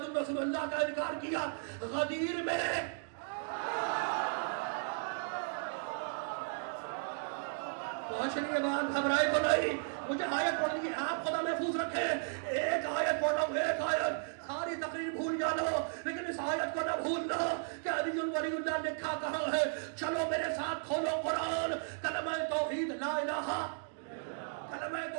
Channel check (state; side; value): silent; left; digital silence